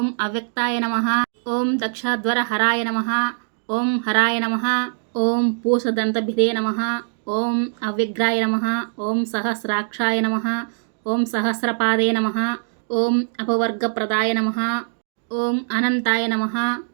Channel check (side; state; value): left; silent; digital silence